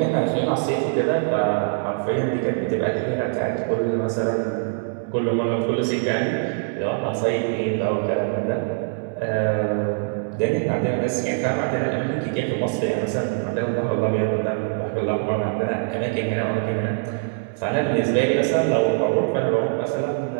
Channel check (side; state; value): left; silent; 63 dB below the other